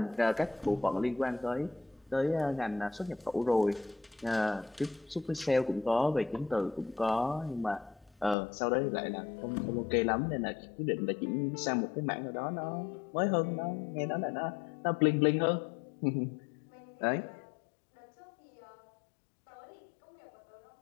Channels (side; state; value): right; drops out; at 8.3 s